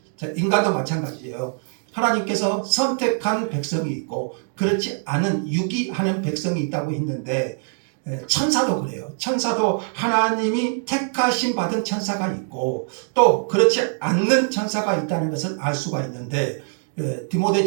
자, 인간도 마찬가지예요. 하나님께서 선택한 백성이 있고 그렇지 않은 유기하는 백성이 있다고 했는데, 천사도 그래요. 천사도 하나님이 택하심 받은 천사가 있고 또 그렇지 않는 천사가 있다는 것을 알 수가 있는데,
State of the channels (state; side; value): silent; left; 64 dB below the other